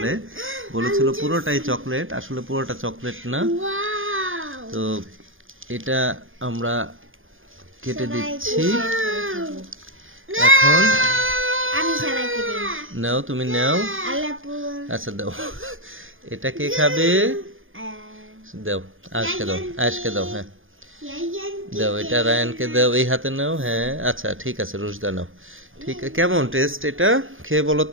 বলেছিল পুরোটাই চকলেট, আসলে পুরোটা চকলেট না। তো এটা আমরা কেটে দিচ্ছি এখন। নাও, তুমি নাও। আচ্ছা দাও, এটা কে খাবে? দাও, আজকে দাও, আজকে দাও। হ্যাঁ দাও, এটা রায়ানকে দাও, এই হাতে নাও। হ্যাঁ আচ্ছা ঠিক আছে, রুশদা নাও। ঠিক আছে, কেমন টেস্ট এটা? খেয়ে বলো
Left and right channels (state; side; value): late; left; 0.59 ms